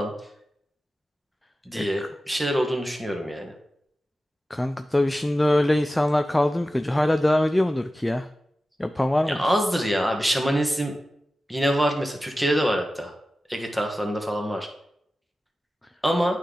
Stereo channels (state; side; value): normal; both; correlation 0.94